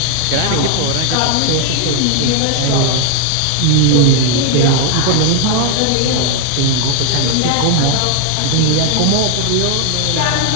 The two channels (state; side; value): different; both; correlation 0.00